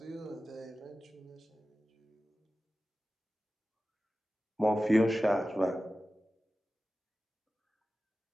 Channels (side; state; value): both; normal; correlation 0.95